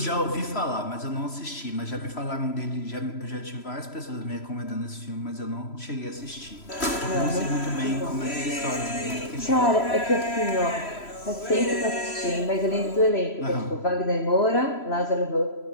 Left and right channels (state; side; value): late; right; 3.0 ms